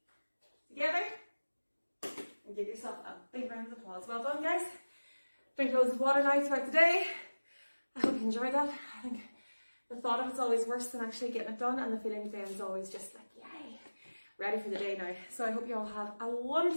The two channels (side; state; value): both; inverted; correlation -1.00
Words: Together. And give yourself a big round of applause. Well done, guys. Drink loads of water now throughout the day. I hope you enjoyed that. I think the thought of it's always worse than actually getting it done, and the feeling then is always just like, yay, ready for the day now. So I hope you all have a